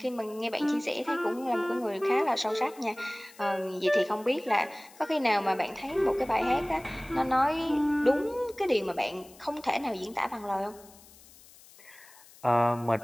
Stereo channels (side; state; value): left; noise; hiss, 23 dB below the sound